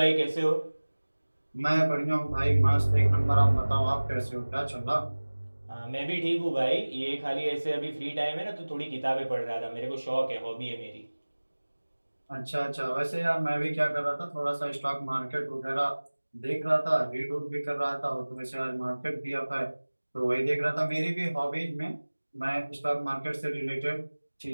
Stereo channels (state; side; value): inverted; both; correlation -1.00